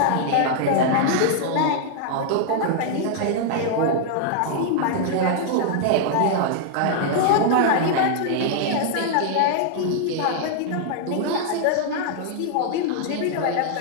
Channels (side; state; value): both; different; correlation -0.01